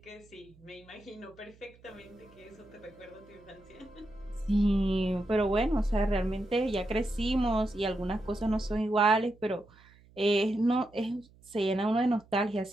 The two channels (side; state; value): right; noise; hum, 27 dB below the sound